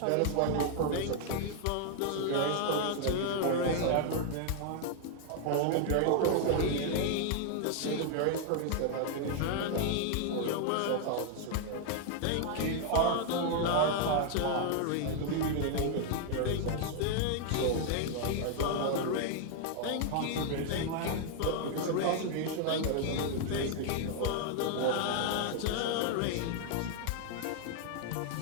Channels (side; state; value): both; different; correlation 0.00